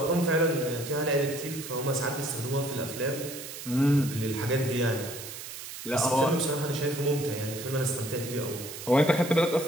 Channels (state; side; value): noise; right; hiss, 10 dB below the sound